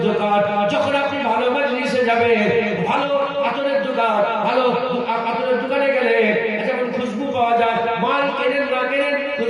দোকান, যখন আপনি ভালো মজলিসে যাবেন, ভালো আতরের দোকান, ভালো আতরের দোকানে গেলে যেমন খুশবু পাওয়া যায়, মাল কেনেন না কেনেন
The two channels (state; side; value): identical; both; correlation 1.00